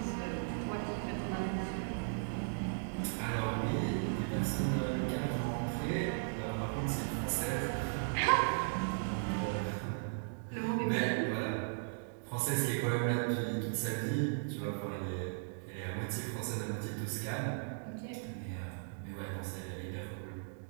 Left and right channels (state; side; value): silent; left; digital silence